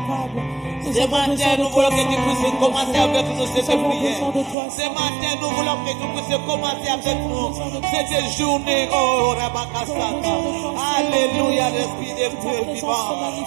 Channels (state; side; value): drops out; left; at 4.5 s